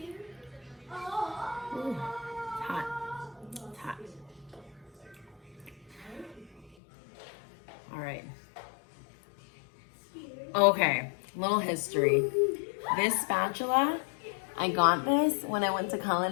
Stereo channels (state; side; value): drops out; right; at 6.8 s